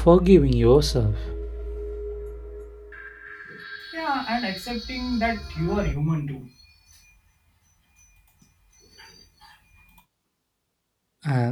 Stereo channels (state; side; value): identical; both; correlation 1.00